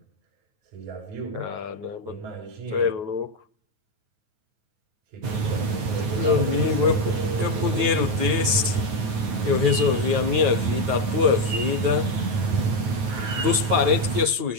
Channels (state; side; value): late; left; 9.3 ms